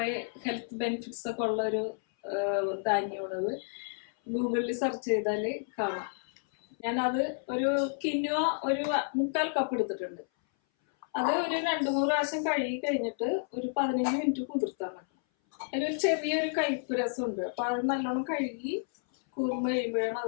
ഹെൽത്ത് ബെനിഫിറ്റ്സ് ഒക്കെ ഉള്ള ഒരു ധാന്യമാണത്. ഗൂഗിളിൽ സെർച്ച് ചെയ്താൽ കാണാം. ഞാനത് ഒരു കിൻവ ഒരു 3/4 കപ്പ് എടുത്തിട്ടുണ്ട്. അത് ഒരു 2-3 പ്രാവശ്യം കഴുകി കഴിഞ്ഞിട്ട് ഒരു 15 മിനിറ്റ് കുതിർത്താൻ വെക്കണം. അതിലൊരു ചെറിയൊരു കയ്പ്പ് രസമുണ്ട്. അപ്പൊ അത് നല്ലോണം കഴുകി കുറുമ്പ് കഴിയുമ്പോഴാണ്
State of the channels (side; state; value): right; silent; 57 dB below the other